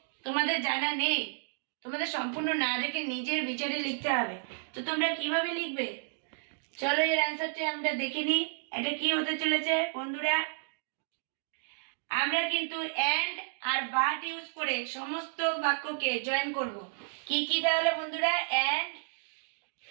তোমাদের জানা নেই, তোমাদের সম্পূর্ণ না দেখে নিজের বিচারে লিখতে হবে। তো তোমরা কিভাবে লিখবে চলো এর অ্যান্সারটা আমরা দেখে নিই। এটা কি হতে চলেছে বন্ধুরা, আমরা কিন্তু অ্যান্ড আর বাট ইউজ করে সমস্ত বাক্যকে জয়েন করব। কি কি তাহলে বন্ধুরা, অ্যান্ড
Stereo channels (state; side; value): silent; left; digital silence